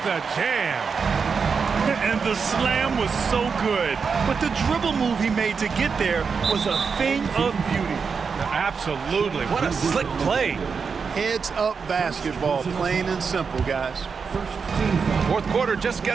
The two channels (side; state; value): left; quieter; 5.6 dB